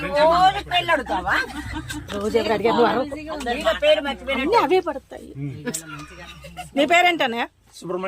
రోజు ఎవరు అడిగారు? అవే పడతాయి. మీ పేరేంటన్నయ్య?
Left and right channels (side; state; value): both; identical; correlation 1.00